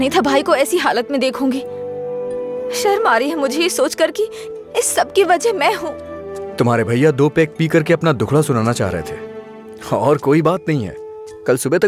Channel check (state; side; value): identical; both; correlation 1.00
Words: था भाई को ऐसी हालत में देखूंगी। शर्म आ रही है मुझे ये सोचकर कि इस सब की वजह मैं हूँ। तुम्हारे भैया 2 पैक पी करके अपना दुखड़ा सुनाना चाह रहे थे और कोई बात नहीं है, कल सुबह